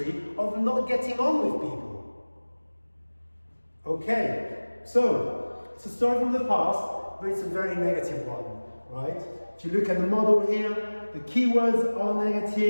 of not getting on with people. Okay, so it's a story from the past, but it's a very negative one, right? If you look at the model here, the keywords are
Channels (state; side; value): inverted; both; correlation -1.00